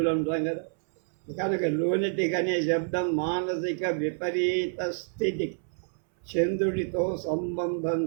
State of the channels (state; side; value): silent; left; 59 dB below the other